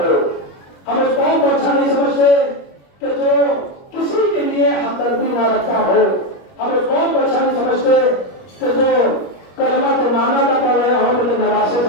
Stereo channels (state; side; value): late; right; 21 ms